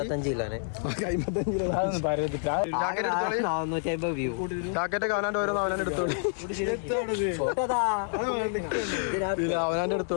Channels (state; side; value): silent; right; 59 dB below the other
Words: ജാക്കറ്റൊക്കെ അവനാൻ്റെ ഓരോന്ന് അവനാൻ്റെ എടുത്തോളി. അവനാൻ്റെ